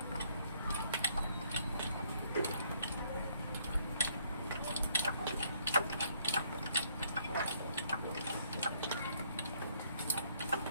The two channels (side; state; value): both; inverted; correlation -0.68